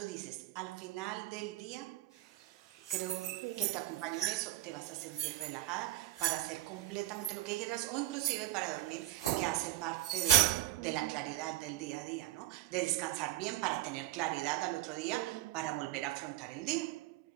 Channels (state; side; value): quieter; left; 15.0 dB